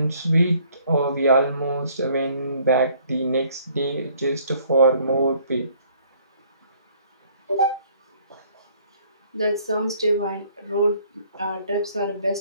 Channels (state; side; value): inverted; both; correlation -0.61